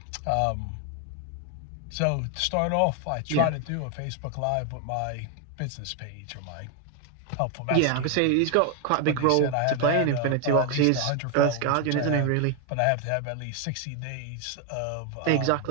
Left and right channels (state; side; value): different; both; correlation 0.01